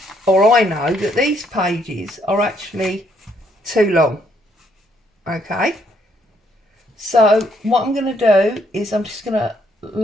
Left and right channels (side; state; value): both; normal; correlation 0.70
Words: or I know, that these pages are actually too long, okay? So what I'm going to do is I'm just going to